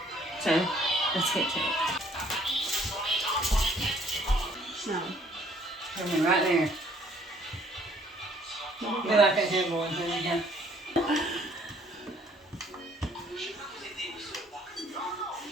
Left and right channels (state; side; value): normal; both; correlation 0.61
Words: So, let's get to it. No. Come right there. Be like a headboard. There we go.